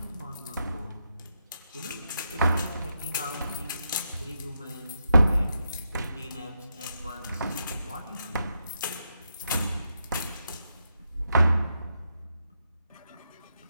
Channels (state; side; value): inverted; both; correlation -0.83